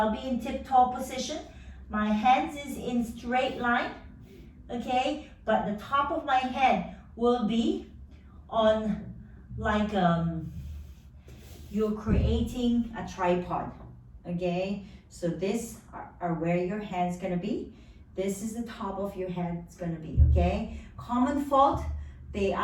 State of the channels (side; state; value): both; identical; correlation 1.00